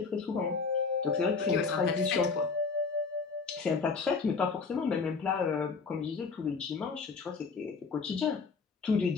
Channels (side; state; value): right; quieter; 4.8 dB